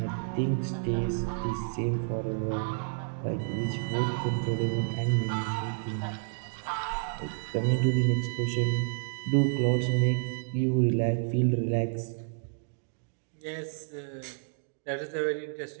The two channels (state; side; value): silent; left; digital silence